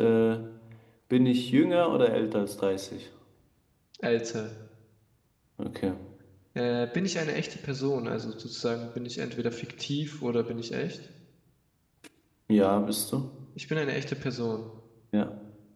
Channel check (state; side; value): identical; both; correlation 1.00